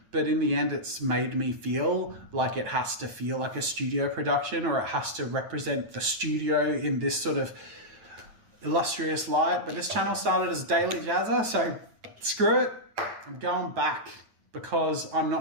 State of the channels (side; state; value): left; late; 9.0 ms